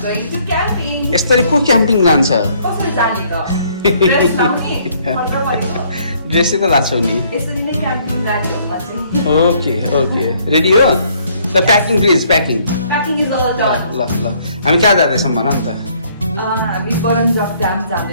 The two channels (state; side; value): inverted; both; correlation -0.64